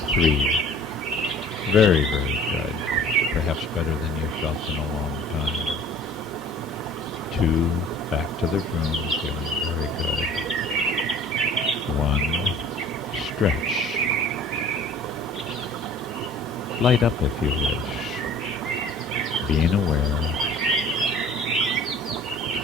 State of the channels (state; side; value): normal; both; correlation 0.49